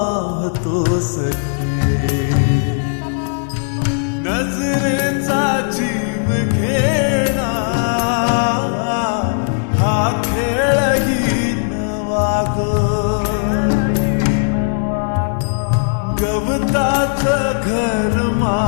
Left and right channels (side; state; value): right; silent; 68 dB below the other